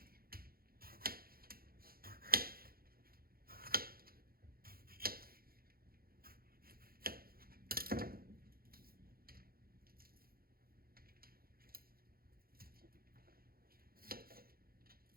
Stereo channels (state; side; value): late; left; 0.43 ms